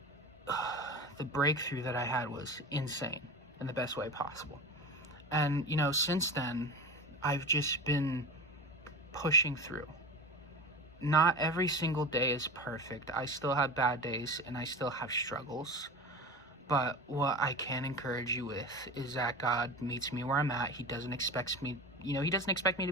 the breakthrough that I had was insane in the best way possible. And, you know, since then, I've just been pushing through. Not every single day is perfect. I still have bad days and I still have struggles. But what I can encourage you with is that God meets me where I'm at. He doesn't expect me, he doesn't expect me to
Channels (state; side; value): normal; both; correlation 0.30